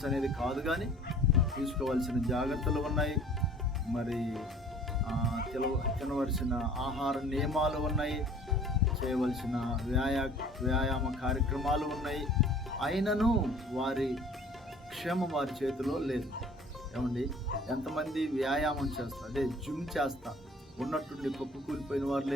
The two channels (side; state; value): both; normal; correlation 0.50